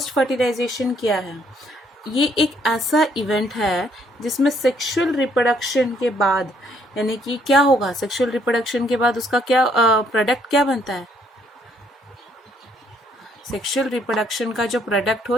फर्टिलाइजेशन क्या है? ये एक ऐसा इवेंट है जिसमें सेक्सुअल रिप्रोडक्शन के बाद, यानी कि क्या होगा, सेक्सुअल रिप्रोडक्शन के बाद उसका क्या प्रोडक्ट क्या बनता है। सेक्सुअल रिप्रोडक्शन का जो प्रोडक्ट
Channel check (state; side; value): normal; both; correlation 0.68